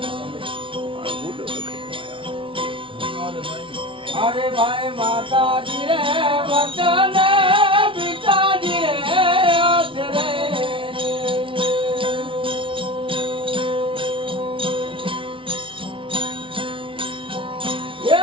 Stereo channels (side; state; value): left; late; 0.25 ms